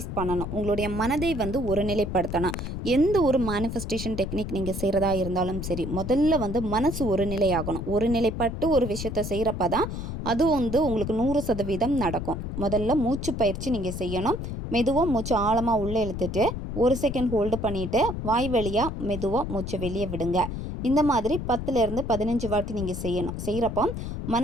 பண்ணணும். உங்களுடைய மனதை ஒருநிலைப்படுத்தணும். எந்த ஒரு மேனிஃபெஸ்டேஷன் டெக்னிக் நீங்கள் செய்கிறதா இருந்தாலும் சரி, முதல்ல மனசு ஒருநிலையாகணும். ஒருநிலைப்பட்டு ஒரு விஷயத்தை செய்கிறப்ப தான் அது உங்களுக்கு 100% நடக்கும். முதல்ல மூச்சு பயிற்சி நீங்கள் செய்யணும். மெதுவாக மூச்சு ஆழமாக உள்ளே இழுத்துட்டு 1 செகண்ட் ஹோல்டு பண்ணிவிட்டு வாய் வழியாக மெதுவாக மூச்சை வெளியே விடுங்க. இந்த மாதிரி 10லேருந்து 15 வாட்டி நீங்கள் செய்யணும். செய்கிறப்போ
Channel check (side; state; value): left; noise; rumble, 5 dB below the sound